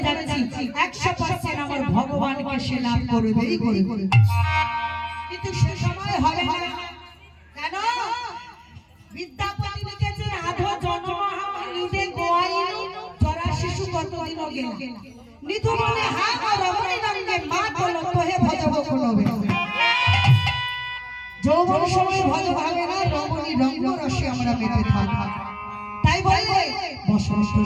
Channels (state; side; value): identical; both; correlation 1.00